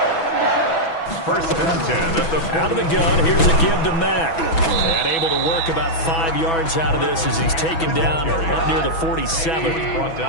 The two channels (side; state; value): right; late; 6.1 ms